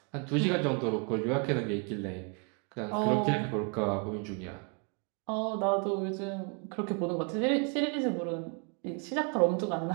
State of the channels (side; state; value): left; quieter; 35.7 dB